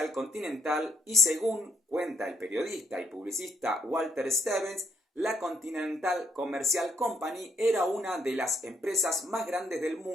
Continental, y según cuenta el periodista y publicista Walter Stevens, la Continental Commercial Company era una de las empresas más grandes del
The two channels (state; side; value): normal; both; correlation 0.70